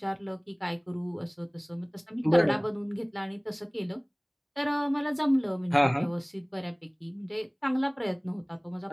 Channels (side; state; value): both; identical; correlation 1.00